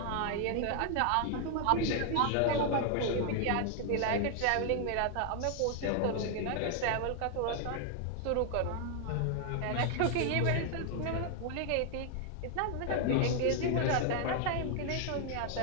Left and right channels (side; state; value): both; different; correlation 0.00